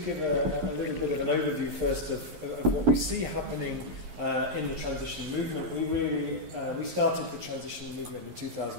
a little bit of an overview first of what we see happening in the transition movement. We started the transition movement in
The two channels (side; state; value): left; late; 11 ms